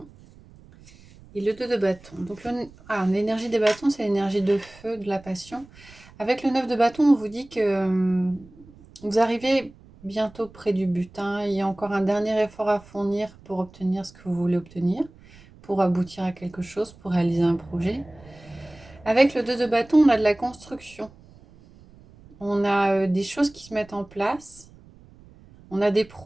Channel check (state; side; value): noise; right; rumble, 24 dB below the sound